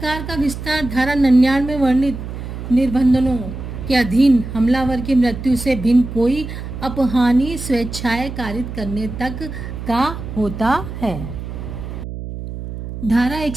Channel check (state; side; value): noise; right; hum, 8 dB below the sound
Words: का विस्तार धारा 99 में वर्णित निर्बंधों के अधीन हमलावर की मृत्यु से भिन्न कोई अपहानी स्वेच्छाएं कारित करने तक का होता है। धारा